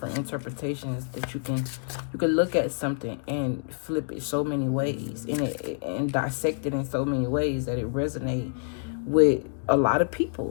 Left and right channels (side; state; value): right; silent; digital silence